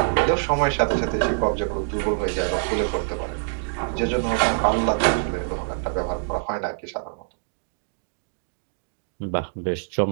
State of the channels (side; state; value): left; silent; digital silence